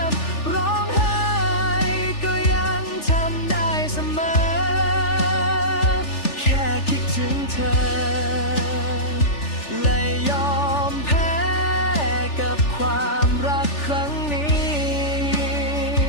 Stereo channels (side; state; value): right; late; 3.4 ms